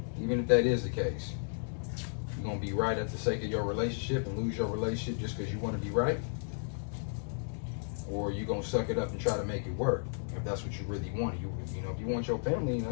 even if that is the case, you're going to be right at the sake of your relationship and lose your relationship just because you want to be right? Or you going to suck it up and try to make it work if that's what you really want? You know, if you want your family and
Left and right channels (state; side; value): silent; right; digital silence